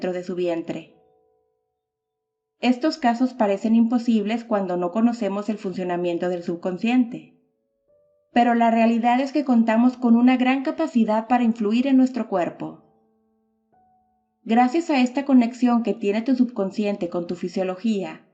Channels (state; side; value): identical; both; correlation 1.00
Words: de su vientre. Estos casos parecen imposibles cuando no conocemos el funcionamiento del subconsciente. Pero la realidad es que contamos con una gran capacidad para influir en nuestro cuerpo. Gracias a esta conexión que tiene tu subconsciente con tu fisiología,